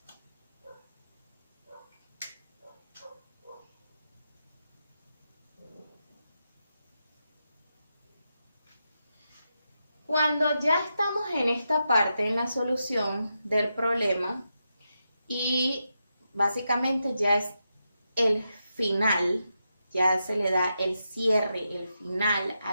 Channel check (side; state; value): both; inverted; correlation -0.87